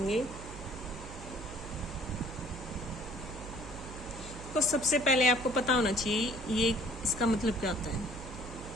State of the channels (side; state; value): right; noise; hum, 12 dB below the sound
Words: तो सबसे पहले आपको पता होना चाहिए ये इसका मतलब क्या होता है।